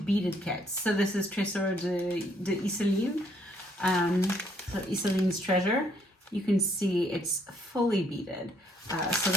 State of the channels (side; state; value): both; normal; correlation 0.68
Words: kits. So this is Trésor de Iseline. So Iseline's Treasure. You can see it's fully beaded. So